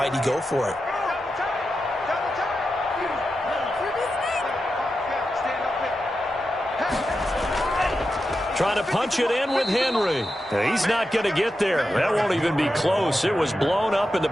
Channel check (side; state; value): both; normal; correlation 0.90